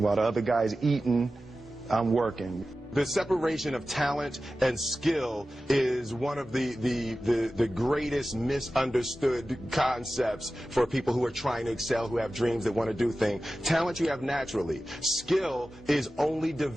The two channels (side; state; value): both; normal; correlation 0.94